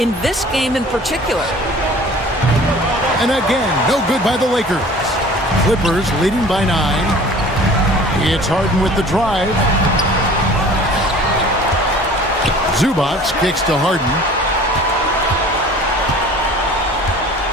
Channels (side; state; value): both; normal; correlation 0.46